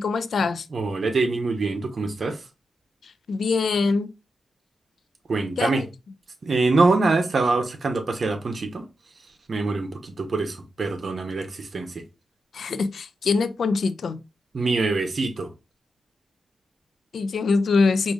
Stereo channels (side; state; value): both; normal; correlation 0.86